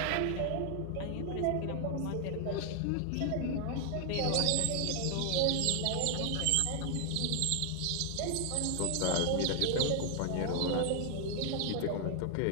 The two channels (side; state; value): both; different; correlation 0.00